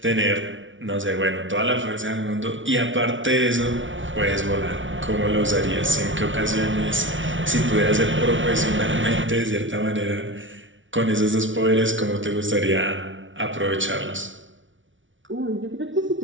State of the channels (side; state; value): left; late; 0.56 ms